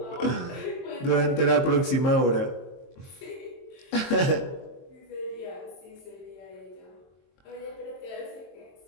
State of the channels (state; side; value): late; right; 22 ms